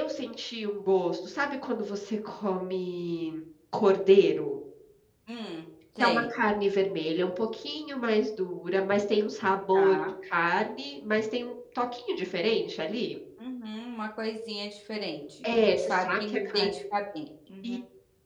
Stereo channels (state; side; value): identical; both; correlation 1.00